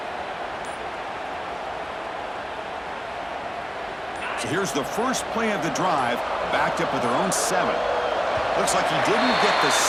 So here's the first play of the drive, backed up with their own 7. Looks like he didn't get the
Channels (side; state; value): both; identical; correlation 1.00